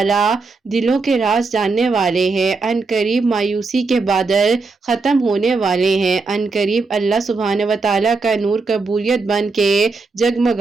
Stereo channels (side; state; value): left; quieter; 4.1 dB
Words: दिलों के राज जानने वाले हैं। अनकरीब मायूसी के बादल खत्म होने वाले हैं। अनकरीब अल्लाह सुब्हान व तआला का नूर कबूलियत बन के